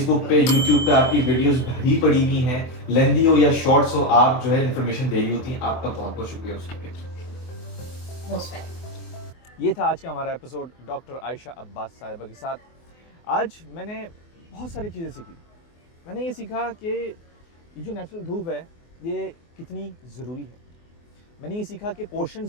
पे, यूट्यूब पे आपकी वीडियोस भरी पड़ी हुई हैं, लेंदी हो या शॉर्ट्स हो, आप जो है इन्फॉर्मेशन दे रही होती हैं। आपका बहुत बहुत शुक्रिया उसके लिए। Most welcome. ये था आज का हमारा एपिसोड डॉक्टर आयशा अब्बास साहिबा के साथ। आज मैंने बहुत सारी चीज़ें सीखी। मैंने ये सीखा कि ये जो नेचुरल धूप है ये कितनी ज़रूरी है। मैंने ये सीखा कि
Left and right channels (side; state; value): right; late; 24 ms